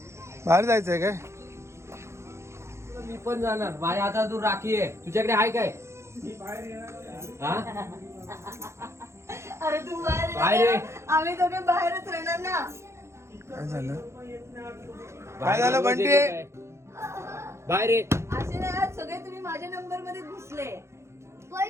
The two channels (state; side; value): late; left; 0.13 ms